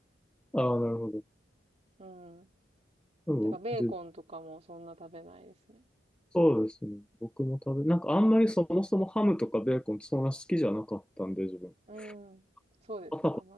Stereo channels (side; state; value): both; normal; correlation 0.97